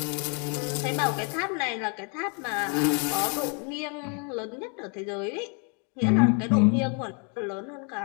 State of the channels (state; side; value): quieter; right; 37.2 dB